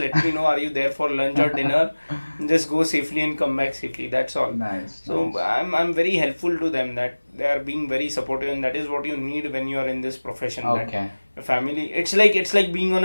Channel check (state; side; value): inverted; both; correlation -1.00